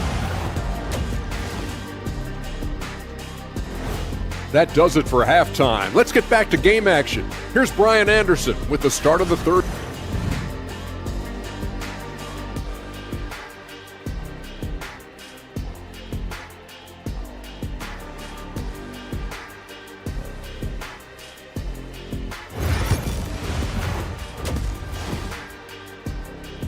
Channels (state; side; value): identical; both; correlation 1.00